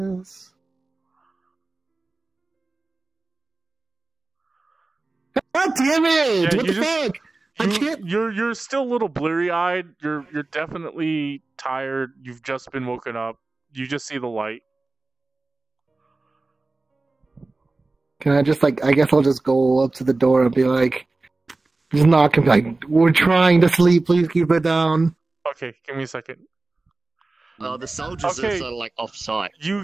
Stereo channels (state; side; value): quieter; left; 3.3 dB